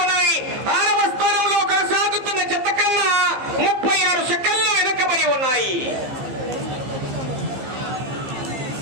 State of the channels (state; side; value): late; left; 15 ms